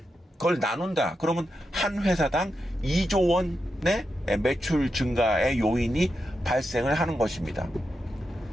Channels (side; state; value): both; normal; correlation 0.87